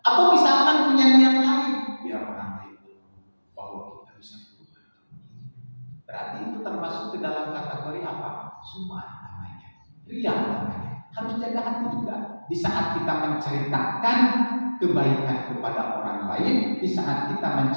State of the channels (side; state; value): both; inverted; correlation -1.00